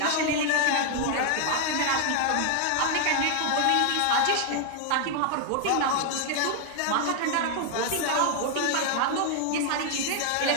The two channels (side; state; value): both; different; correlation 0.00